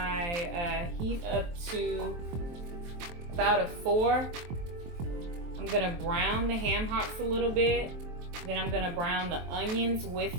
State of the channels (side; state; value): left; late; 23 ms